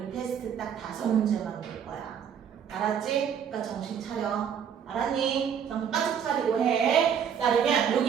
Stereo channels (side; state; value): left; quieter; 8.0 dB